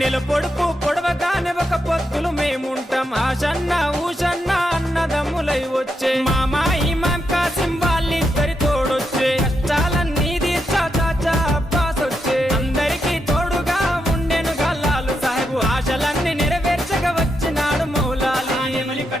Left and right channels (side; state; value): both; normal; correlation 0.83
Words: నెల పొడుపు పొడవగానే ఒక పొత్తులు మేముంటాం ఆషన్న ఊషన్న అన్నదమ్ములై వచ్చే మామా ఇమాం కాసిం వాళ్ళిద్దరి తోడొచ్చే కష్టాలన్నీ తీర్చా చాచా అబ్బాస్ వచ్చే అందరికీ తోడుగా ఉండెనుగా లాలు సాహెబు ఆశలన్నీ నెరవేర్చగా వచ్చినాడు మౌలాలి